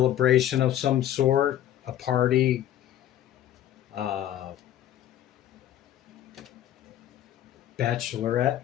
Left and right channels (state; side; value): quieter; right; 11.9 dB